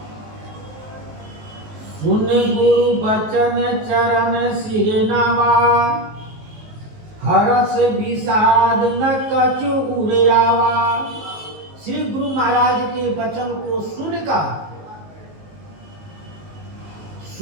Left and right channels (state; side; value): late; left; 19 ms